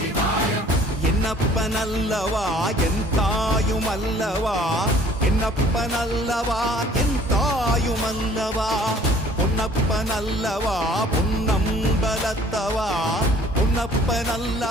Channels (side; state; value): both; normal; correlation 0.54